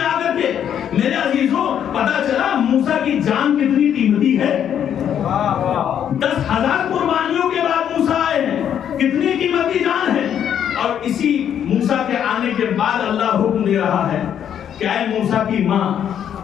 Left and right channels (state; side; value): quieter; right; 9.3 dB